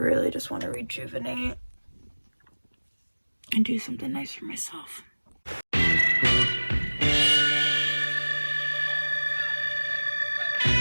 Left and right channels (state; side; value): inverted; both; correlation -1.00